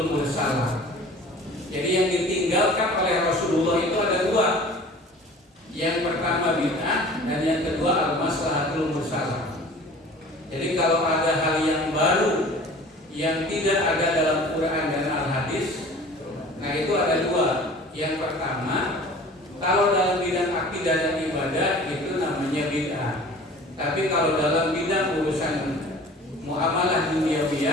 mursalah. Jadi yang ditinggalkan oleh Rasulullah itu ada dua. Yang pertama bid'ah dan yang kedua al-maslahatul mursalah. Jadi kalau ada hal yang baru yang tidak ada dalam Quran dan Al-Hadis, nah itu ada dua. Yang pertama, kalau dalam bidang akidah dan ibadah itu namanya bid'ah. Tapi kalau dalam bidang urusan muamalah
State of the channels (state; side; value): normal; both; correlation 0.44